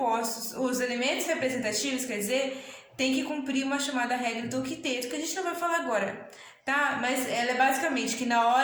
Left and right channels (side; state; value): both; identical; correlation 1.00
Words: os elementos representativos, quer dizer, tem que cumprir uma chamada regra do octeto, que a gente não vai falar agora, tá? Mas ela é basicamente que na